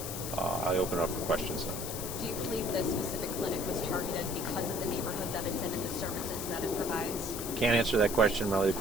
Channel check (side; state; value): left; noise; hiss, 6 dB below the sound